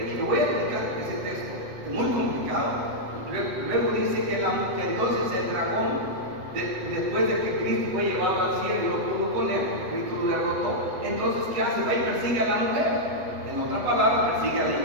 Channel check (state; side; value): late; left; 8.1 ms